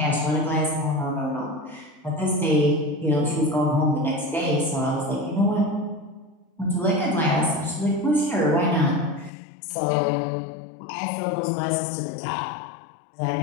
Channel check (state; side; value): drops out; right; at 9.3 s